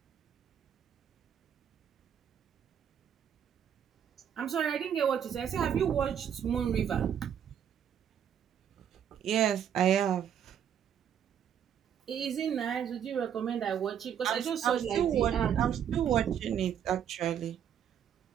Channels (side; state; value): left; quieter; 8.9 dB